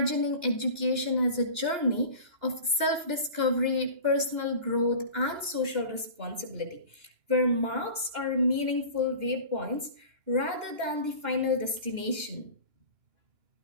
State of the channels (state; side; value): late; left; 2.1 ms